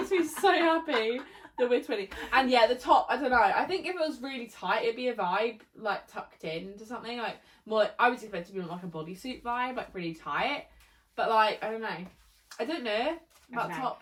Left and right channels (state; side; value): identical; both; correlation 1.00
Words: me so happy that we're twinning. And yeah, the top, I don't know. I think if it was really tight, it'd be a vibe, like tucked into something. Like, more like, I was expecting to be like a bodysuit vibe, like really tight. But like, I don't know. I don't know about